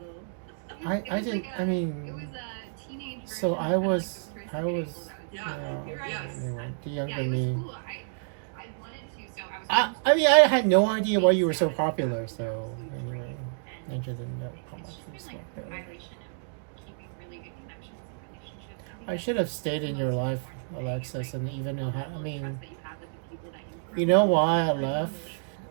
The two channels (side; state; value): left; silent; digital silence